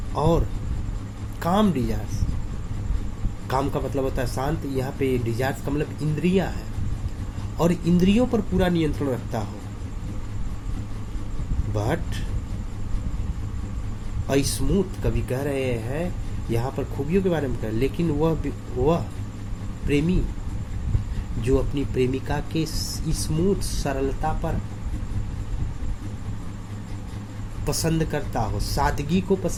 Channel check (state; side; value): identical; both; correlation 1.00